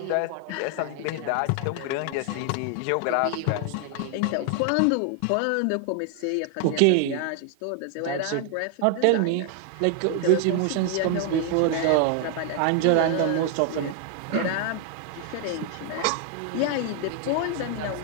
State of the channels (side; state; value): both; different; correlation 0.00